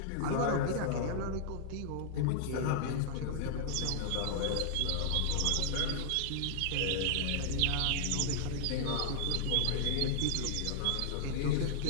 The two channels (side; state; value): both; different; correlation -0.01